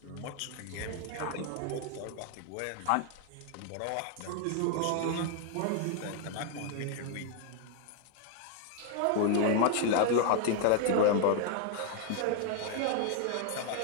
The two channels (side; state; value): both; different; correlation 0.00